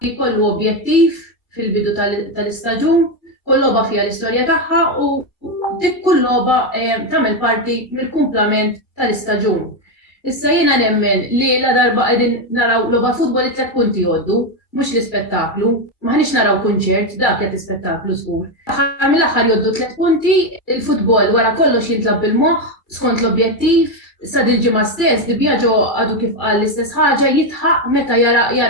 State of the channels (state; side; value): late; right; 2.2 ms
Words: jkollu objettiv fil-bidu tal-istaġun, kull logħba fiha l-istorja tagħha u dik kull logħba tagħmel parti mill-kumplament tal-istaġun. Issa jiena nemmen li la darba qegħdin naraw logħba futbol it-tlet punti jgħoddu, mhux l-ispettaklu, maħniex naraw kunċert, dak qed ispettaklu żgur. Aħħar mill-aħħar jgħoddu 3 punti, il-futbol wara kollox jintlab bil-moħħ skont l-objettiv, sa dil-ġimgħa stess Di Biagio għadu kif qal l-istess ħaġa jitħaq meta